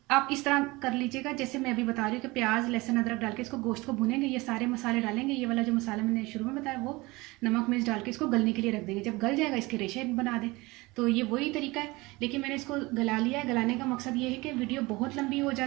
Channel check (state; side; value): quieter; left; 22.5 dB